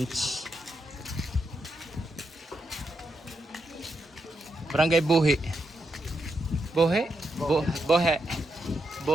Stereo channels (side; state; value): both; normal; correlation 0.83